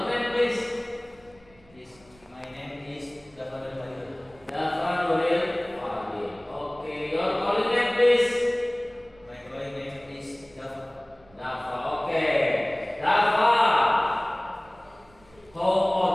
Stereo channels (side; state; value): right; noise; rumble, 29 dB below the sound